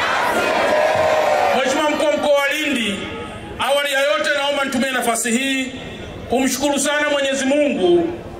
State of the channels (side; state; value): both; identical; correlation 1.00